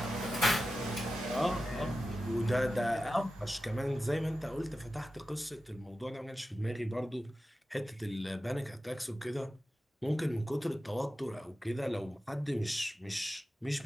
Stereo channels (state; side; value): normal; both; correlation 0.93